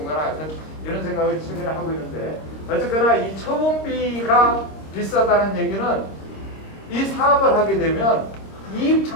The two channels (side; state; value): right; late; 26 ms